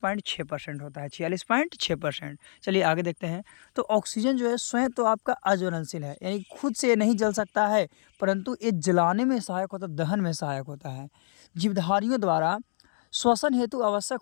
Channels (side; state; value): right; silent; digital silence